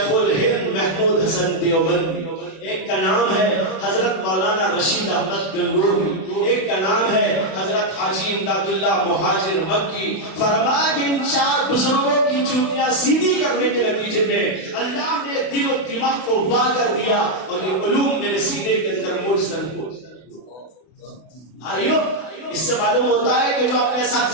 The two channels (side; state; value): right; late; 32 ms